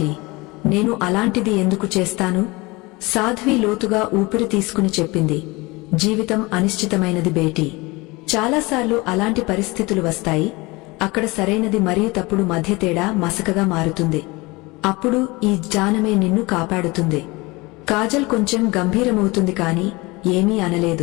నేను అలాంటిది ఎందుకు చేస్తాను? సాధ్వి లోతుగా ఊపిరి తీసుకుని చెప్పింది. జీవితం అనిశ్చితమైనది బేటీ. చాలాసార్లు అలాంటి పరిస్థితులు వస్తాయి. అక్కడ సరైనది మరియు తప్పుడు మధ్య తేడా మసకగా మారుతుంది. అప్పుడు ఈ జ్ఞానమే నిన్ను కాపాడుతుంది. కాజల్ కొంచెం గంభీరమవుతుంది కాని ఏమీ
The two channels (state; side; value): quieter; right; 23.8 dB